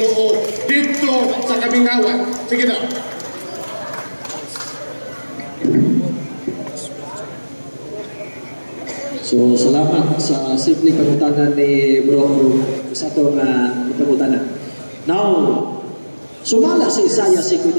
dito sa Kamingawan. Sige na. So, salamat sa simpleng pagkutanan ni Bro sa itong pagkutanan. Now, sumala sa Isaiah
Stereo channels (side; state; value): both; inverted; correlation -1.00